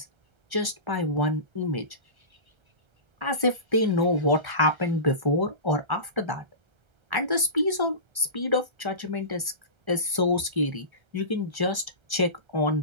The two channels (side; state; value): left; late; 1.3 ms